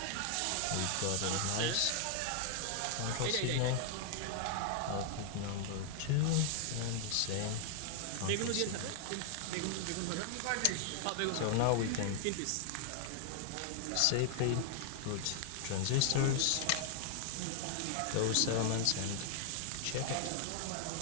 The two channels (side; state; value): both; different; correlation 0.00